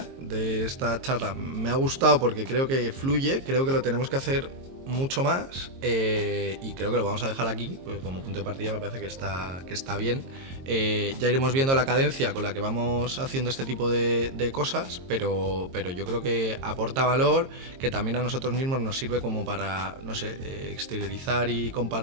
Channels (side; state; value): left; late; 22 ms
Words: de esta charla, me ha gustado porque creo que fluye, creo que lo tenemos que hacer mucho más y creo que lo vamos a dejar aquí, pues como punto de partida me parece que está bien. Ya iremos viendo la cadencia con la que vamos haciendo este tipo de cosas, pero yo creo que aporta valor, que también a nosotros mismos nos sirve como para, no sé, exteriorizar y